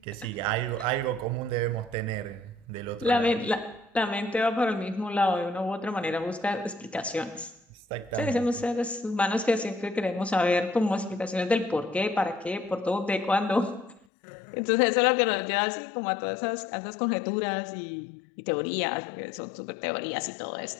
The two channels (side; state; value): right; drops out; at 14.0 s